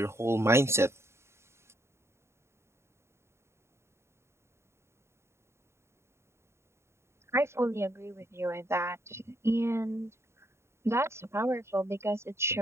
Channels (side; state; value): left; late; 0.13 ms